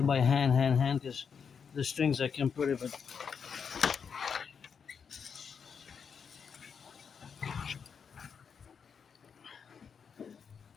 by hand, because the strings I can put it, but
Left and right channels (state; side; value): quieter; right; 6.5 dB